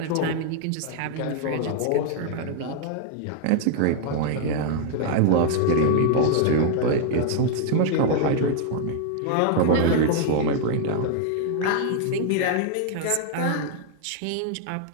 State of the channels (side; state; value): both; different; correlation 0.00